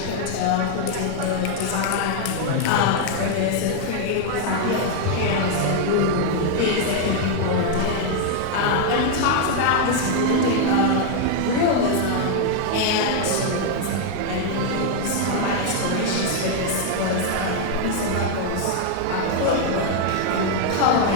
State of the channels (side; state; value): both; different; correlation 0.00